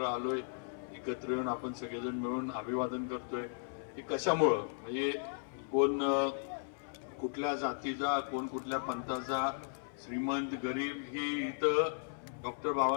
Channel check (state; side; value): silent; right; 54 dB below the other